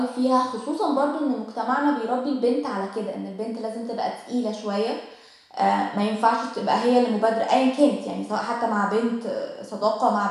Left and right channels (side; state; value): both; identical; correlation 1.00